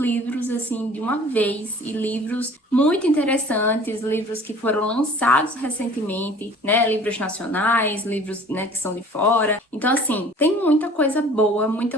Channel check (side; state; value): both; normal; correlation 0.48